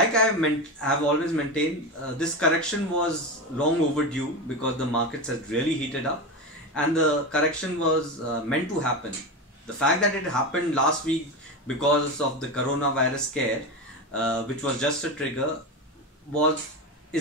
have always maintained, this correction was long overdue because the markets had really heated up, and the correction was meant to happen. The fact that it happened last week because of the coronavirus scare, which was just a trigger, was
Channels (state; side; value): normal; both; correlation 0.19